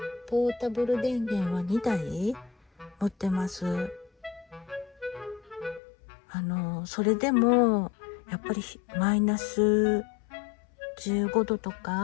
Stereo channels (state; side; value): drops out; right; at 5.8 s